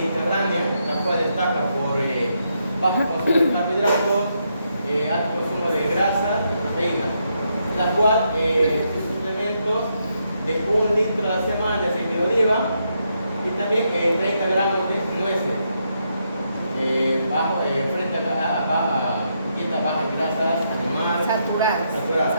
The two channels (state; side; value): inverted; both; correlation -0.79